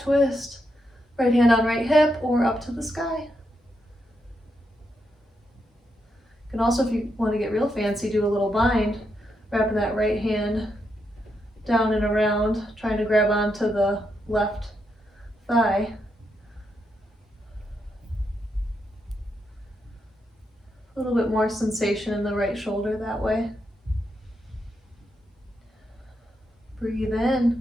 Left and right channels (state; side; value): normal; both; correlation 0.82